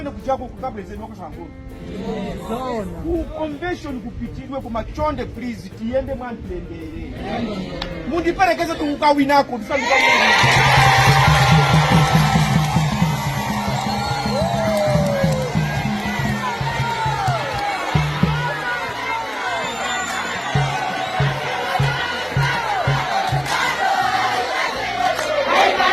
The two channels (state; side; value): identical; both; correlation 1.00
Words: kujako kukapresident wakasangolo. Ku convention kupitirwe kumachonde please tiyende mwantendere. Mundiperekeze tukukawinako ndisanduka.